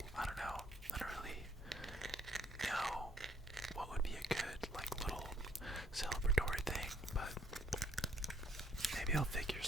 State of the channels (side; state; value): both; normal; correlation 0.66